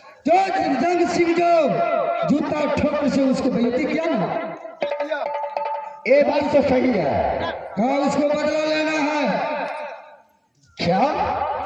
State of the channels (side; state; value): both; identical; correlation 1.00